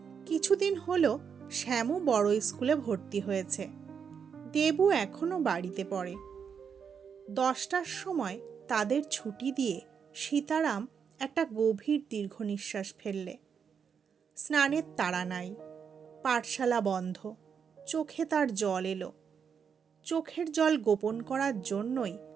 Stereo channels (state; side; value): quieter; left; 6.8 dB